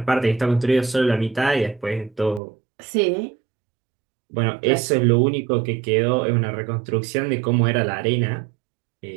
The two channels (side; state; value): left; drops out; at 2.4 s